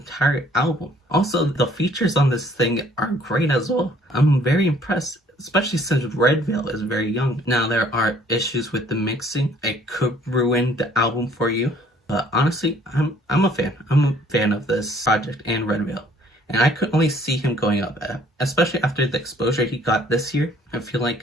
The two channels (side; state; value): both; normal; correlation 0.59